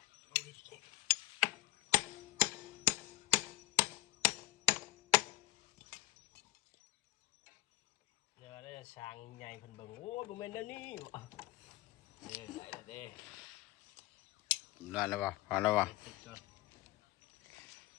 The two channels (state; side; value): quieter; right; 19.1 dB